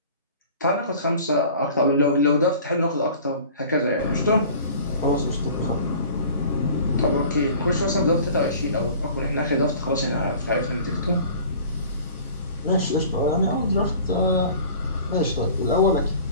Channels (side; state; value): both; inverted; correlation -0.45